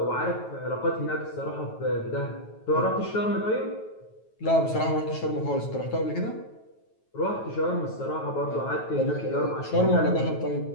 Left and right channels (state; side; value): late; right; 9.2 ms